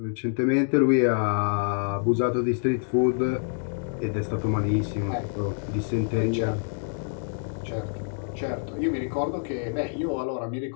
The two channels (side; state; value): right; silent; digital silence